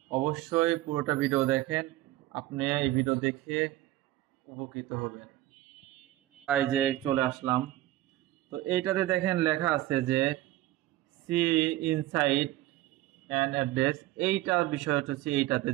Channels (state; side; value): quieter; left; 15.9 dB